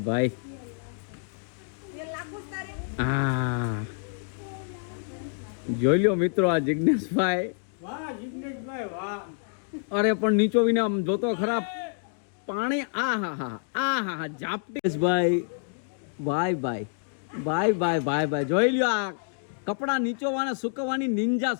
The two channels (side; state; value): right; silent; digital silence